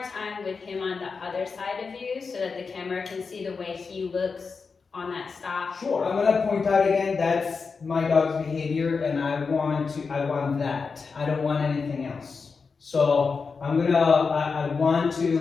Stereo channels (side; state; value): right; quieter; 4.9 dB